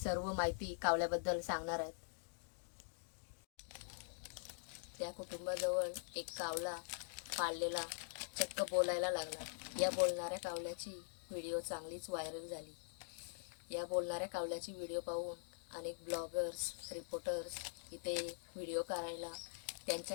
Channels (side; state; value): right; silent; digital silence